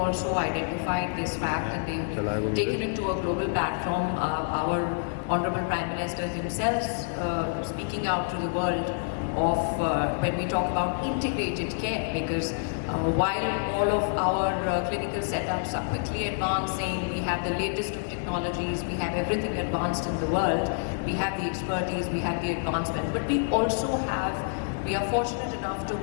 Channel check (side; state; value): right; silent; digital silence